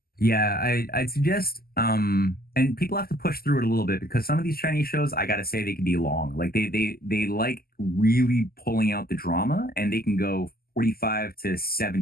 yeah, I'd suggest and people have to push through it a little bit because some of these Chinese shows, I gotta say, they can be long. Like they like really pulling out the drama, and they can go 45 to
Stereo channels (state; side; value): late; right; 0.44 ms